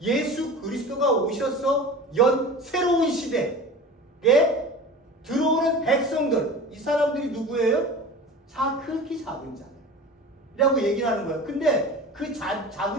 예수 그리스도가 오셔서 연 새로운 시대에 들어오는 백성들, 이 사람들이 누구예요? 극히 작은 자라고 얘기를 하는 거예요. 근데 그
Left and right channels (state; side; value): normal; both; correlation 0.36